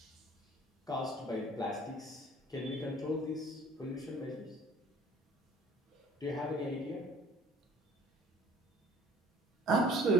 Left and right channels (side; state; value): both; normal; correlation 0.52